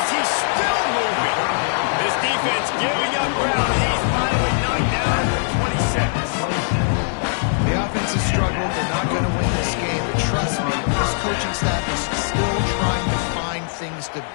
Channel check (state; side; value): silent; right; digital silence